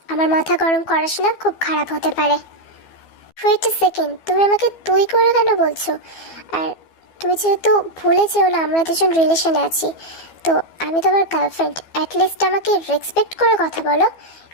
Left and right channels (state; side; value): late; right; 12 ms